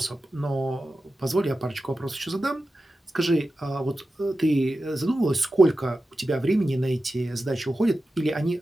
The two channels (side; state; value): both; normal; correlation 0.93